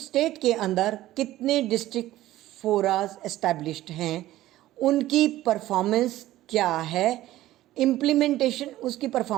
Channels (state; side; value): quieter; left; 15.2 dB